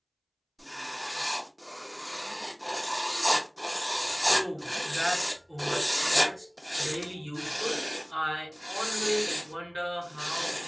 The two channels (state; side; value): identical; both; correlation 1.00